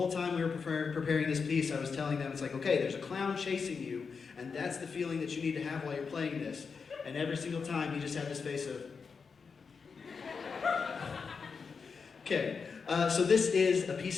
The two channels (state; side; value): quieter; right; 5.4 dB